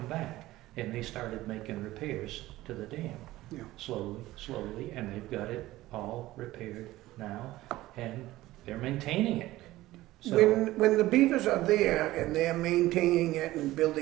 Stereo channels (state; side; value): quieter; left; 16.8 dB